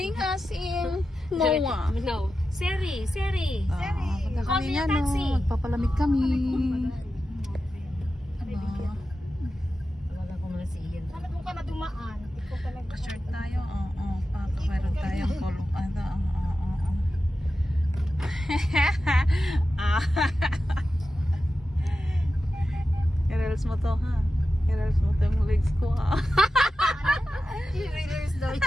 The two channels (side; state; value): both; normal; correlation 0.92